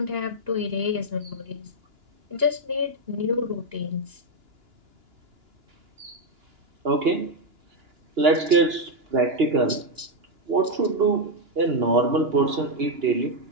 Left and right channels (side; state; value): left; late; 2.9 ms